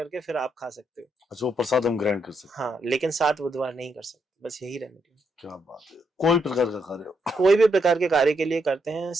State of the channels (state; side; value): normal; both; correlation 0.78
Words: फिर आप खा सकते हो। अच्छा, वो प्रसाद हम ग्रहण कर सकते हाँ, लेकिन 7 बुधवार नहीं कर सकते, बस यही रेमेडी है। क्या बात है। कोई प्रकार का कार्य हो, कोई भी प्रकार के कार्य के लिए करते हैं